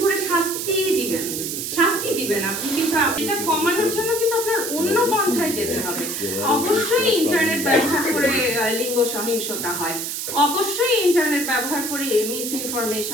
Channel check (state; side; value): noise; right; hiss, 4 dB below the sound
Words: করে শাস্তি দিবেন আপনি, কিন্তু এটা কমানোর জন্য কিন্তু আপনার অন্য পন্থায় যেতে হবে। অবশ্যই ইন্টারনেট ব্যবহার করে লিঙ্গ সহিংসতা হয়, অবশ্যই ইন্টারনেট ব্যবহার করে মিস